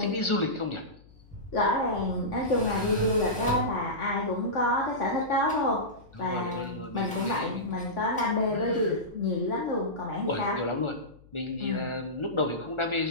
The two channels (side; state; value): left; noise; hum, 25 dB below the sound